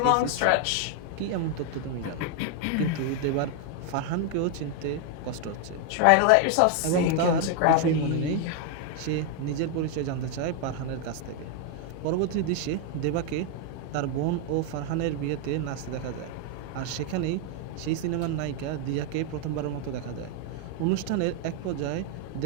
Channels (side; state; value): both; different; correlation 0.00